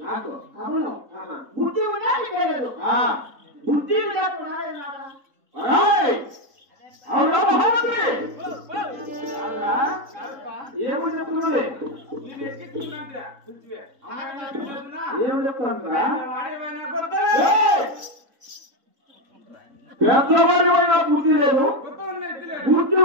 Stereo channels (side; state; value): left; late; 3.7 ms